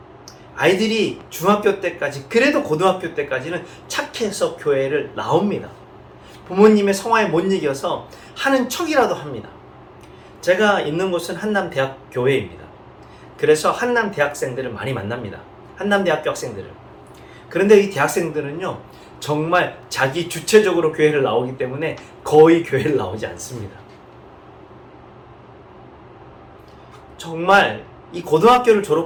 아이들이 중학교 때까지, 그래도 고등학교 때까지는 착해서 교회를 나옵니다. 부모님의 성화에 못 이겨서 하는 척이라도 합니다. 제가 있는 곳은 한남대학 교회입니다. 그래서 한남 대학생들을 많이 만납니다. 한남대학교 학생들을. 그런데 이 대학생들은요, 정말 자기 주체적으로 교회를 나오기 때문에 거의 교회를 나오지 않습니다. 정말 이 고등학교를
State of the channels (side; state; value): both; identical; correlation 1.00